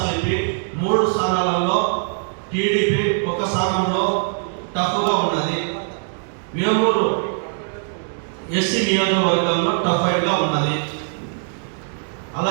3 స్థానాలలో టీడీపీ 1 స్థానంలో టఫ్గా ఉన్నది. వేమూరు ఎస్సీ నియోజకవర్గంలో టఫ్ ఫైట్ గా ఉన్నది.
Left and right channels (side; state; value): left; silent; 60 dB below the other